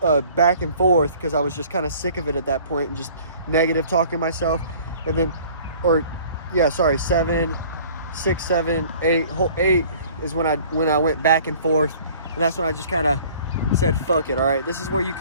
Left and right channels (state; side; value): inverted; both; correlation -0.51